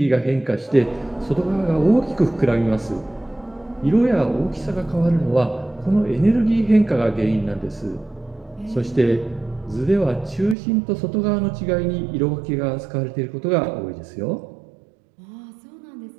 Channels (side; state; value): left; drops out; at 10.6 s